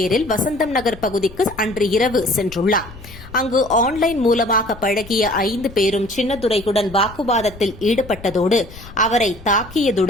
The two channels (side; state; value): left; noise; rumble, 18 dB below the sound